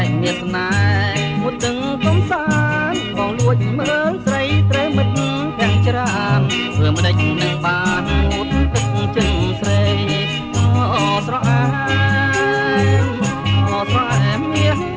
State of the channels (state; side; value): identical; both; correlation 1.00